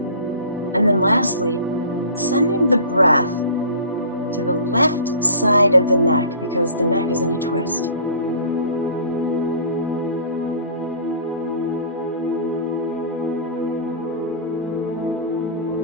And then lastly, sending the breath to the left side of the neck because the neck is in a twist.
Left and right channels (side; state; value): both; inverted; correlation -0.43